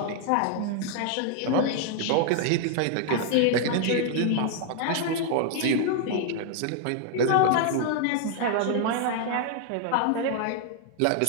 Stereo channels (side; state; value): both; different; correlation 0.00